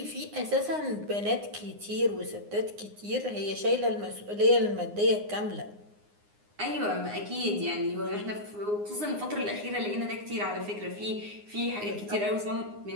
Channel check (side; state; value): left; late; 9.7 ms